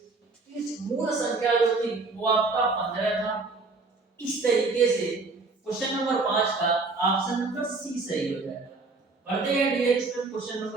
इस मूल संख्या जो थी वो आपका 15 था। इस तरीके से क्वेश्चन नंबर 5 का ऑप्शन नंबर सी सही हो जाएगा। बढ़ते हैं डियर स्टूडेंट क्वेश्चन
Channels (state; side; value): quieter; left; 3.8 dB